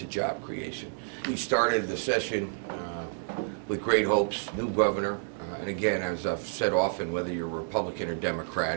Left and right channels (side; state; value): left; silent; digital silence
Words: job creation. We started the session with great hopes, new governor, and again, as I've said often, whether you're Republican or